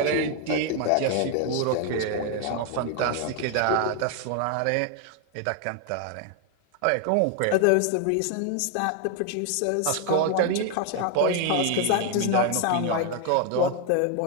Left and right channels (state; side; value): different; both; correlation 0.00